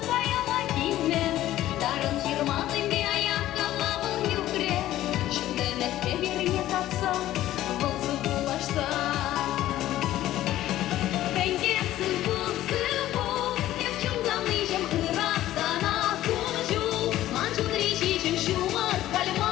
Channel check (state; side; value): quieter; right; 14.1 dB